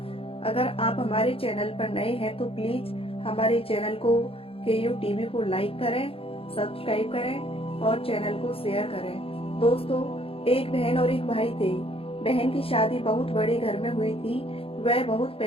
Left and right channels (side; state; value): right; late; 0.27 ms